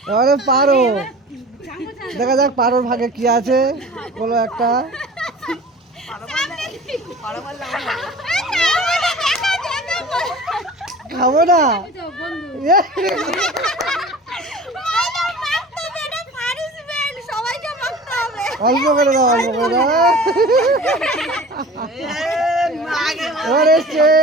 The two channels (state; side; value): normal; both; correlation 0.41